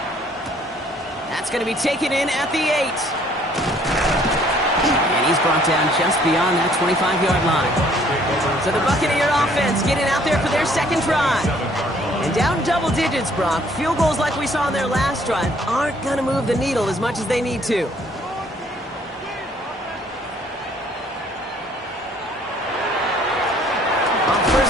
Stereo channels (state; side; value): normal; both; correlation 0.61